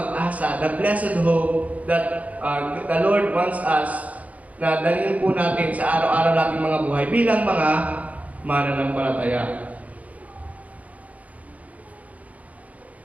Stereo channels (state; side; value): late; left; 0.070 ms